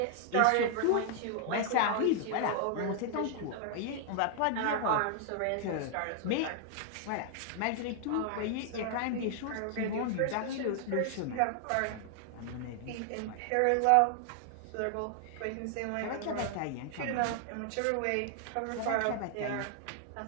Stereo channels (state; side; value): different; both; correlation 0.00